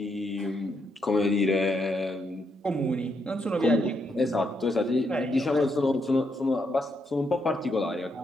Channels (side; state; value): both; normal; correlation 0.78